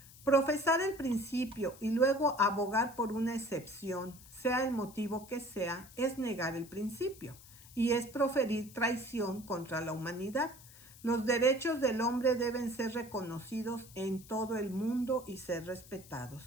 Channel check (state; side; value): noise; left; hiss, 20 dB below the sound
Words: Profesar el principio y luego abogar por una excepción, sea el motivo que sea, es negar el principio y es proferir traición contra la humanidad. Los derechos del hombre deben ser reconocidos en todo el mundo y ser